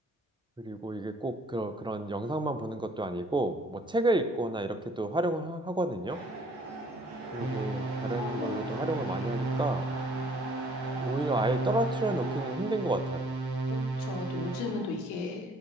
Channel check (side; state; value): both; normal; correlation 0.60